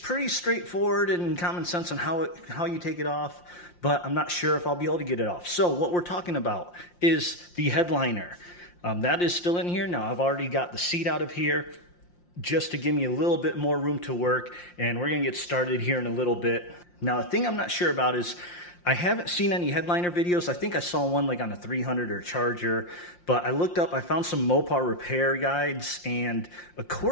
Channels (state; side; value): late; right; 5.7 ms